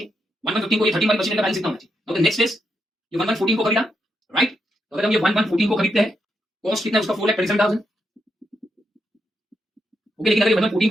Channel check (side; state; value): both; normal; correlation 0.82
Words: 1115 को ये 13 वाली मशीनरी का बैलेंस कितना होना चाहिए। नाउ द नेक्स्ट इज ये 1114 को खरीदा, राइट, तो अगर हम ये 1114 को खरीदते हैं, कॉस्ट कितना है उसका 4,37,000। ओके, लेकिन अगर ये 1114